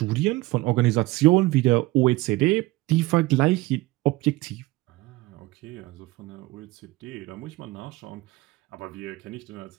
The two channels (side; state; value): left; quieter; 19.9 dB